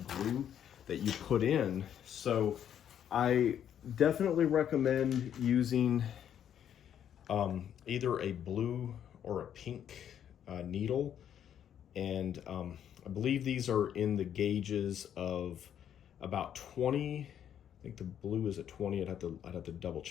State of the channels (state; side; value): quieter; right; 9.6 dB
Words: glue that you put in. So I definitely recommend using either a blue or a pink needle. And I believe these are in the gauges of about 20. I think the blue is at 20. I'd have to double